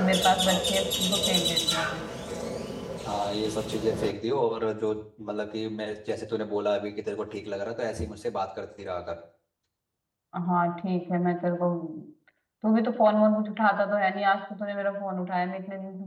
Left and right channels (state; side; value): identical; both; correlation 1.00